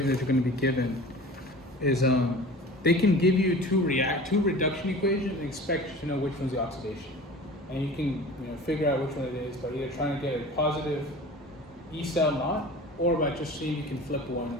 that you're going to be given is they can give you two reduction equations and expect you to know which one's the oxidation. And you can figure out which one it is by either trying to get a positive E cell knot or by just seeing if you can flip one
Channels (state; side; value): normal; both; correlation 0.39